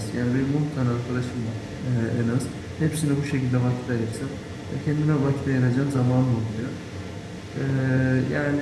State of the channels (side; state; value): both; identical; correlation 1.00